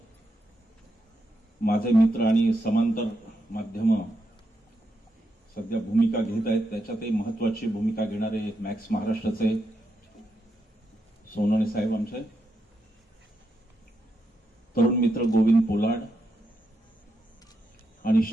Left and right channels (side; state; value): both; normal; correlation 0.83